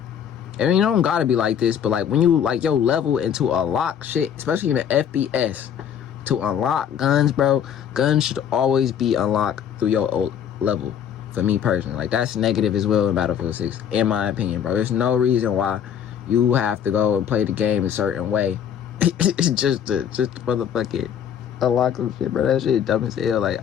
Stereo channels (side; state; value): right; quieter; 8.8 dB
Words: I mean, you don't gotta be like this, but like when you like yo level into unlock shit, especially in the FPS, to unlock guns, bro, guns should always be unlocked through your old level. For me personally, like, that's negative as well in Battlefield 6, in my opinion, bro. There's no reason why you have to go and play the game a certain way just to motherfucking unlock some shit, bro. That shit dumb as hell. Like,